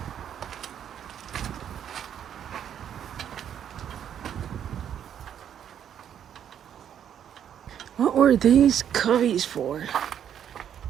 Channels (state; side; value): quieter; left; 9.3 dB